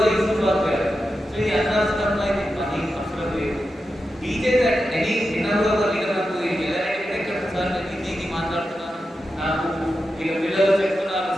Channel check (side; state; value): both; normal; correlation 0.90